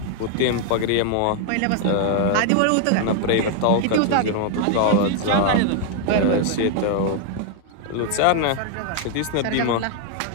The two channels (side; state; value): both; different; correlation 0.00